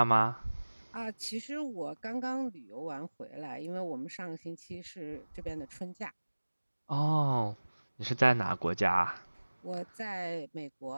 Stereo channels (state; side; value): inverted; both; correlation -1.00